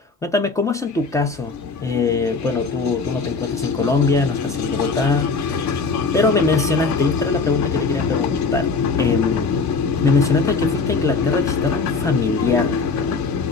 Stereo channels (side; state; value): right; quieter; 4.4 dB